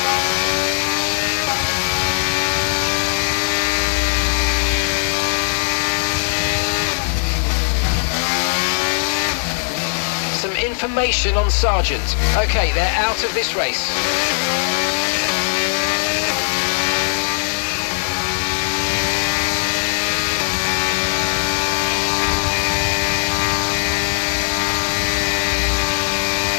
Some information on Sargent. Okay, they're out of this race.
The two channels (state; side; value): silent; right; 62 dB below the other